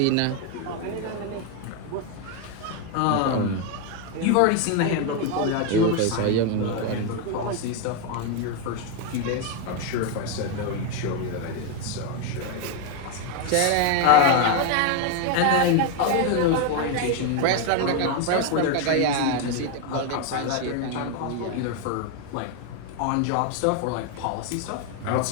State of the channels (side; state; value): both; different; correlation 0.01